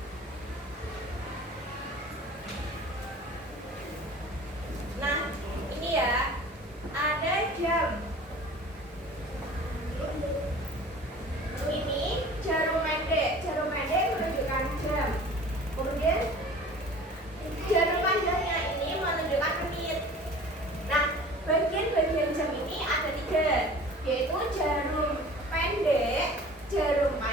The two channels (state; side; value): normal; both; correlation 0.44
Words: Nah, ini ya, ada jam. Ini jarum pendek menunjukkan jam. Kemudian jarum panjangnya ini menunjukkan menit. Nah, bagian-bagian jam ini ada 3, yaitu jarum pendek, jarum